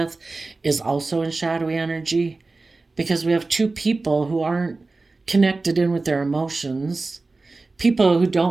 is also in shadowy energy, because we have two people who aren't connected in with their emotions, people who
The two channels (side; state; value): left; quieter; 3.5 dB